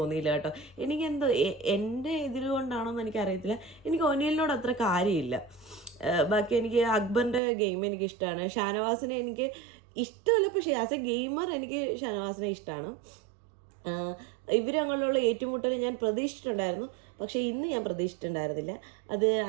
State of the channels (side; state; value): left; drops out; at 7.4 s